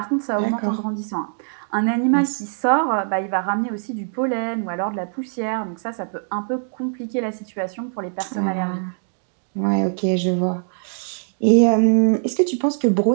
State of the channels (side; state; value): left; silent; digital silence